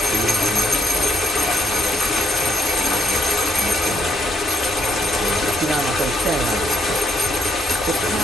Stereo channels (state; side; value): normal; both; correlation 0.75